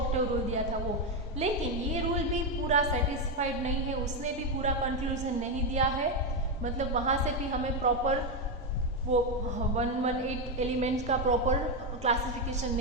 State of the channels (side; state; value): both; normal; correlation 0.07